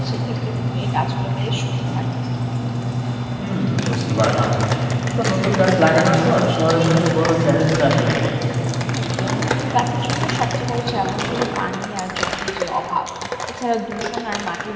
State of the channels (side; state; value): both; identical; correlation 1.00